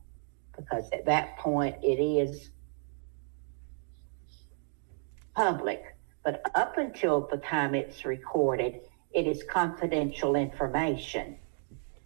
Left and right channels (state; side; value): silent; left; digital silence